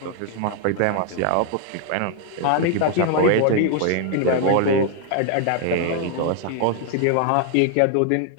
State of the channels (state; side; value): different; both; correlation 0.00